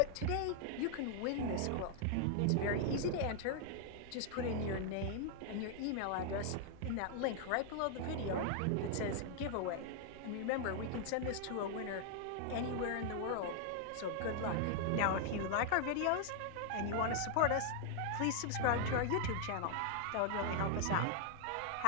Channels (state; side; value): different; both; correlation 0.00